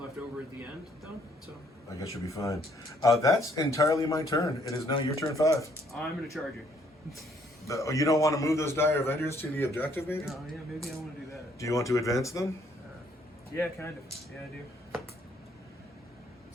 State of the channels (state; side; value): normal; both; correlation 0.66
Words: over at the end, though. So I guess you'll be fine. That's entirely my turn. It is now your turn 5. I'm going to charge you. You don't want to move those Dire Avengers to the objective, maybe? Oh, yeah, maybe I want to do that. Do you want to advance them? Yeah, kind of. Yeah, I do.